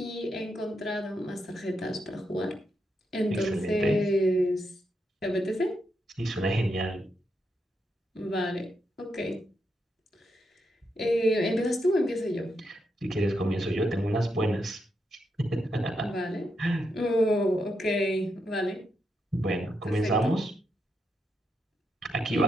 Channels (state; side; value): normal; both; correlation 0.82